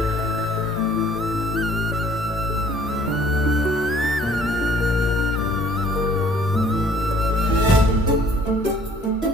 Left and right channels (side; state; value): both; normal; correlation 0.56